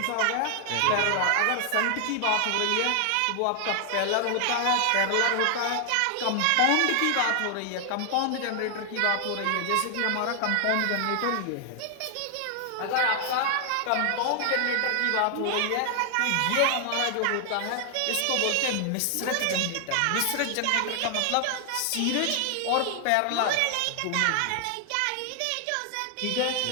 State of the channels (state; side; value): different; both; correlation 0.00